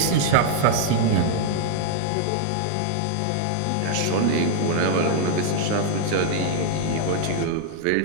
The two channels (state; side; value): different; both; correlation 0.00